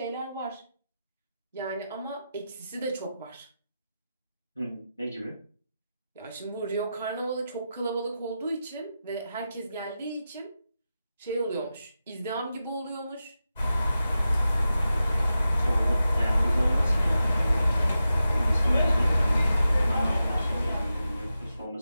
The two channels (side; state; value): both; inverted; correlation -0.91